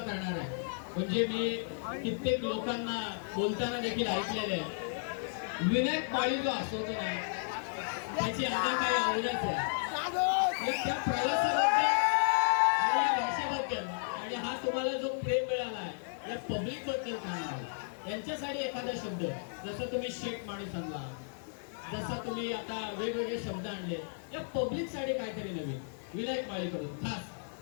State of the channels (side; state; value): right; silent; digital silence